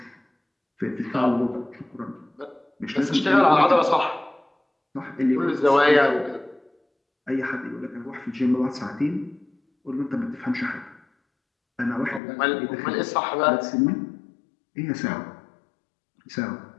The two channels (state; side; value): drops out; right; at 12.2 s